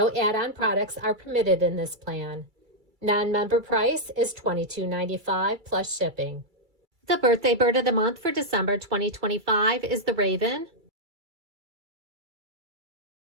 add-on products are permitted in this plan. Non-member price is $22.95 plus shipping. The Birthday Bird of the Month for December 2025 is the Raven.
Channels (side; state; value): left; late; 2.3 ms